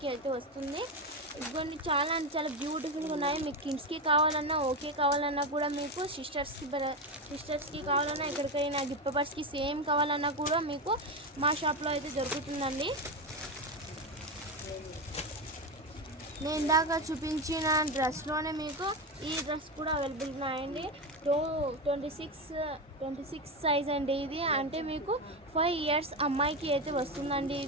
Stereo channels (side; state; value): both; normal; correlation 0.15